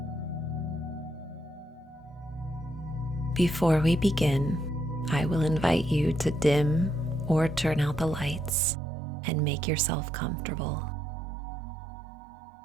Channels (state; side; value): drops out; left; at 8.6 s